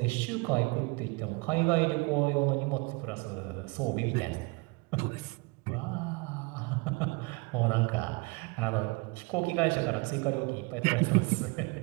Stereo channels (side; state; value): left; quieter; 28.1 dB